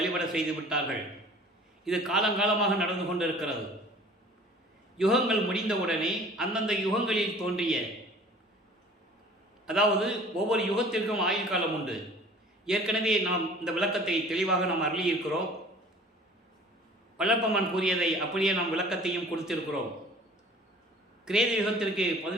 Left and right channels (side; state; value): both; normal; correlation 0.48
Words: செய்து விட்டார்கள். இது காலங்காலமாக நடந்து கொண்டிருக்கிறது. யுகங்கள் முடிந்தவுடனே அந்தந்த யுகங்களில் தோன்றிய, அதாவது ஒவ்வொரு யுகத்திற்கும் ஆயுள் காலம் உண்டு. ஏற்கனவே நாம் இந்த விளக்கத்தை தெளிவாக நாம் அருளியிருக்கிறோம். வல்லப்பம்மன் கூறியதை அப்படியே நாம் விளக்கத்தையும் கொடுத்திருக்கிறோம். கிரேத யுகத்திற்கு